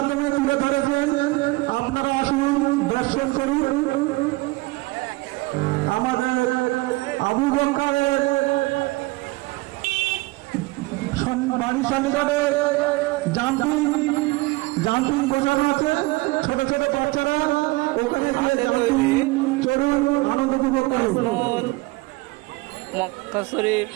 তুলে ধরেছেন। আপনারা আসুন, দর্শন করুন। আমাদের আবু বকরের বাড়ির সন্নিকটে জাম্পিং বসানো আছে, ছোট ছোট বাচ্চারা ওখানে গিয়ে জাম্পিং চড়ুন, আনন্দ উপভোগ করুন। মক্কা শরীফ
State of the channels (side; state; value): left; quieter; 22.4 dB